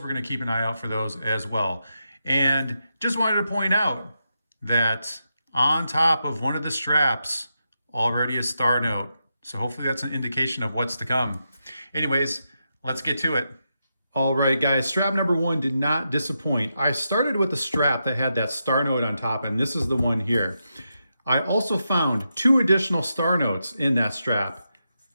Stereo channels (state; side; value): inverted; both; correlation -0.86